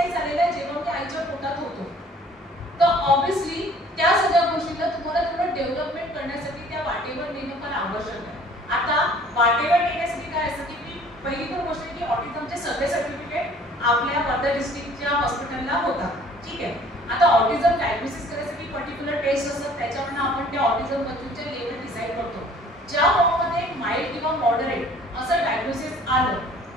झालेला आहे जेव्हा मी आईच्या पोटात होतो. तर ऑब्विसली त्या सगळ्या गोष्टीला तुम्हाला थोडं डेव्हलपमेंट करण्यासाठी त्या वाटेवर नेणं पण आवश्यक आहे. आता वाटेवर नेण्यासाठी काय असतं की मी पहिली तर गोष्ट की ऑटिझमचे सगळे सर्टिफिकेट आपल्या वर्धा डिस्ट्रिक्टच्या हॉस्पिटलला होतात. ठीक आहे. आता ऑटिझम डायग्नोसिस करायसाठी पर्टिक्युलर टेस्ट असतात त्याच्यावरून आपण त्या ऑटिझम बच्चूचे लेवल डिसाईड करतो. ज्या फॉर्ममध्ये माइल्ड किंवा मॉडरेट असं डायग्नोसिस आलं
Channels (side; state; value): both; normal; correlation 0.53